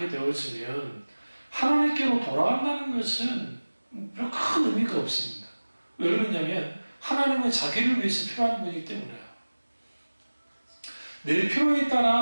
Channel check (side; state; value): both; inverted; correlation -1.00